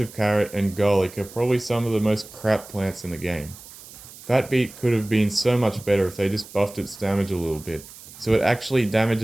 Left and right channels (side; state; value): right; noise; hiss, 18 dB below the sound